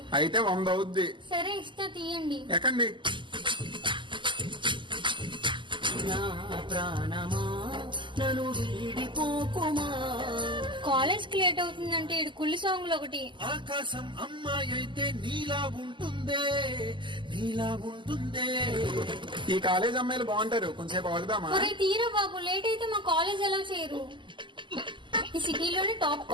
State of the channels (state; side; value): late; left; 0.24 ms